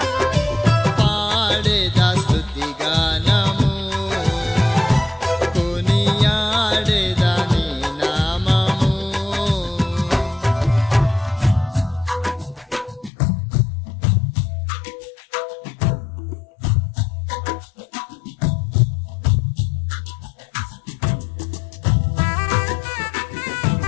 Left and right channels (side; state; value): right; drops out; at 13.1 s